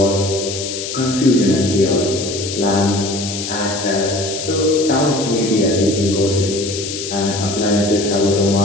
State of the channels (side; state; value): left; noise; hiss, 7 dB below the sound